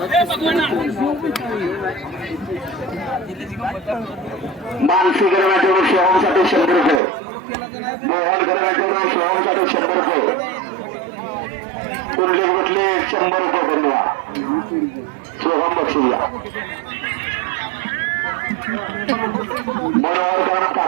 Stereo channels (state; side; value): drops out; left; at 7.0 s